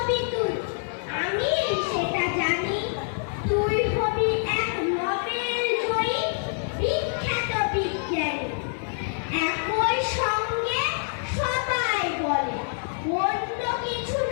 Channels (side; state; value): right; silent; 61 dB below the other